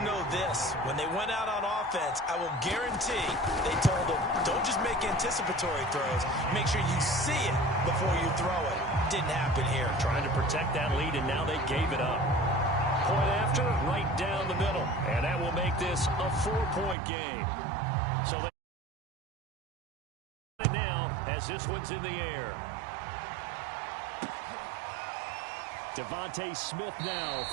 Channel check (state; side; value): drops out; left; at 16.9 s